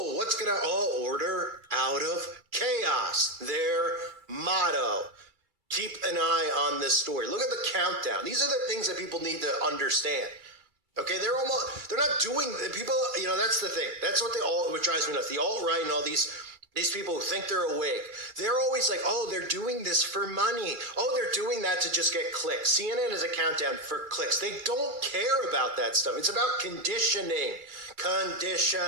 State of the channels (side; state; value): left; late; 2.3 ms